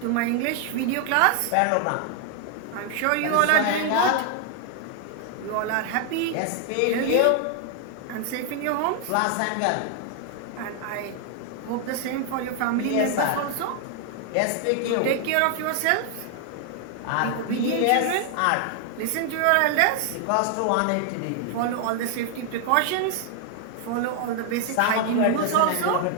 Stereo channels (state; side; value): different; both; correlation 0.00